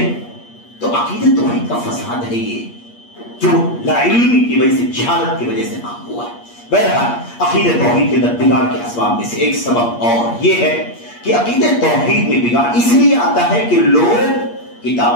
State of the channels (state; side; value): late; right; 8.5 ms